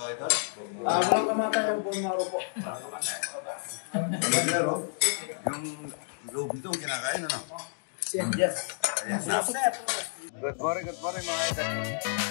idol? Walang kamatay ang buong maro po. Pero, yung loob nito kinakain, ano? Yes. Ayan, good morning mga idol.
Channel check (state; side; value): silent; right; digital silence